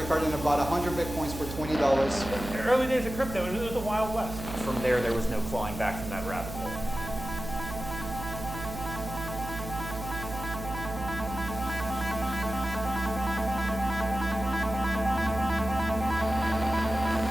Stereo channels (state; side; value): noise; right; hum, 9 dB below the sound